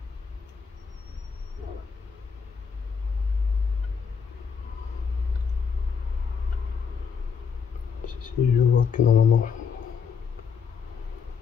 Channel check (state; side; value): quieter; right; 6.1 dB